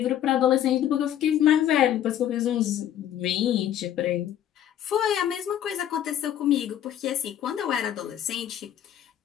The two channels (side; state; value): right; quieter; 10.9 dB